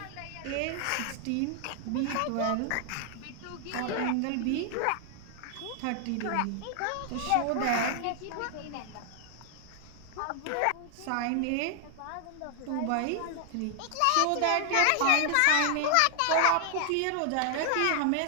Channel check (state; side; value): different; both; correlation 0.00